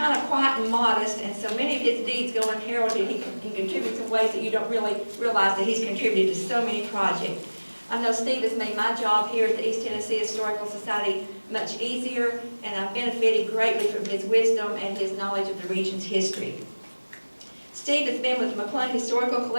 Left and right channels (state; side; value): inverted; both; correlation -1.00